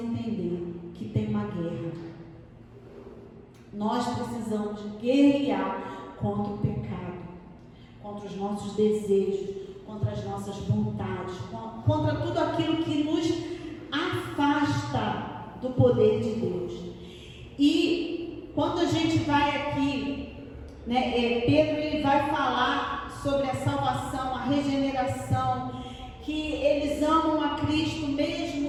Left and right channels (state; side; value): identical; both; correlation 1.00